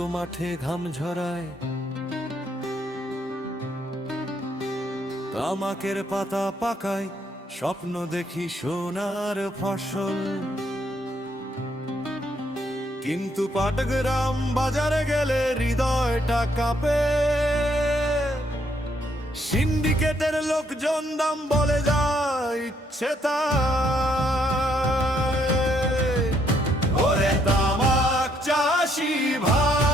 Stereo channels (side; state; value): both; normal; correlation 0.71